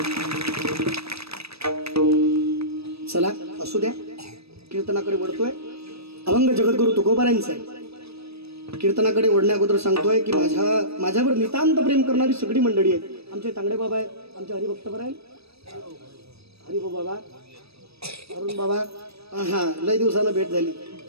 चला असू द्या. कीर्तनाकडे वळतोय. अभंग जगद्गुरु तुकोबारांचा आहे. कीर्तनाकडे वळण्या अगोदर सांगतोय की माझ्यावर नितांत प्रेम करणारी सगळी मंडळी आहे. आमचे तांगडे बाबा आहे, आमचे हरिभक्त आहे, हरिभो बाबा, अरुण बाबा. हा लय दिवसानं भेट झाली.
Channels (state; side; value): late; left; 0.78 ms